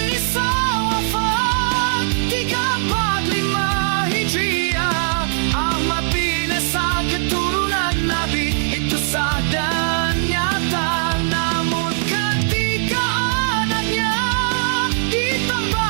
Isa wafat 345 Hijriah. Ahmad bin Isa keturunan Nabi, itu sah dan nyata. Namun ketika anaknya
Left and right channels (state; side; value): silent; left; 56 dB below the other